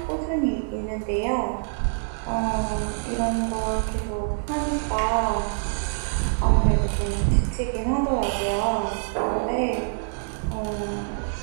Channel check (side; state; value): left; silent; 62 dB below the other